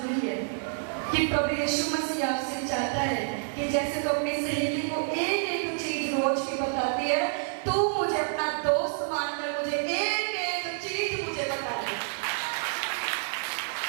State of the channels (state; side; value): silent; left; digital silence